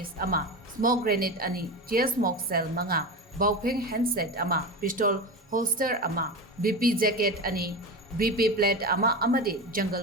ama smoke grenade ani tear smoke cell manga baupeng handset ama pistol holster ama BP jacket ani BP plate ama amadi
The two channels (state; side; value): normal; both; correlation 0.24